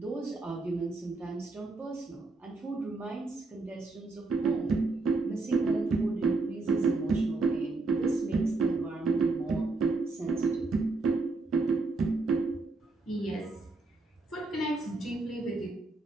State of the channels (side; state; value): left; quieter; 3.5 dB